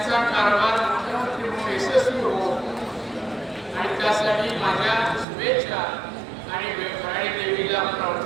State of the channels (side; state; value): left; drops out; at 5.2 s